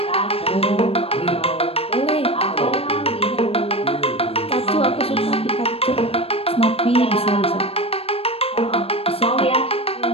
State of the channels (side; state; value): right; late; 0.28 ms